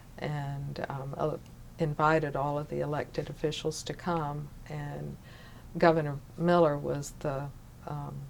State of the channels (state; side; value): identical; both; correlation 1.00